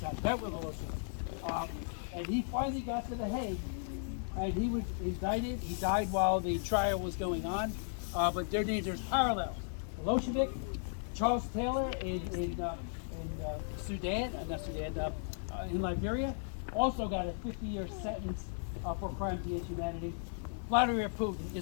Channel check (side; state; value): right; silent; 54 dB below the other